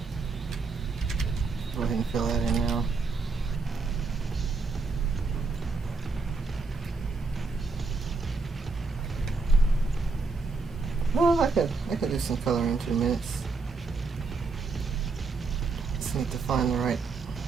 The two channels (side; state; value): left; quieter; 4.1 dB